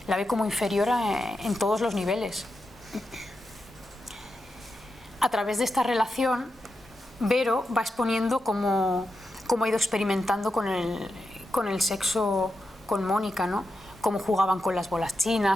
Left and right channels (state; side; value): normal; both; correlation 0.88